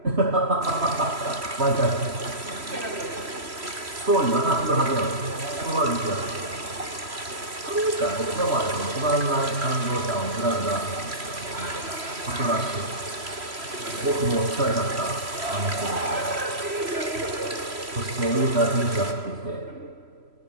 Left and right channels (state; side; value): late; left; 3.0 ms